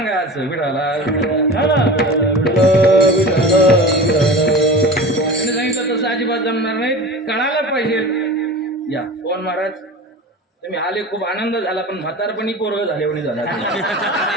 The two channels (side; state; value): both; normal; correlation 0.34